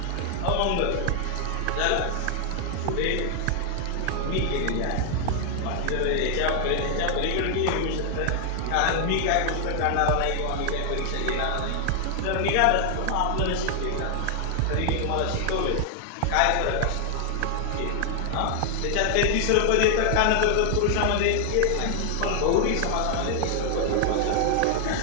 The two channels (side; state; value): both; different; correlation 0.00